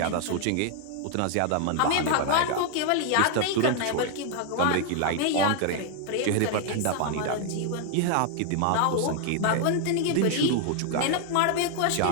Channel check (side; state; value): both; different; correlation 0.00